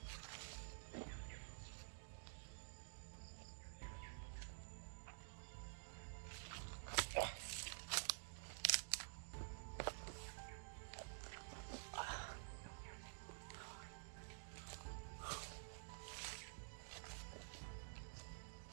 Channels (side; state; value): left; silent; digital silence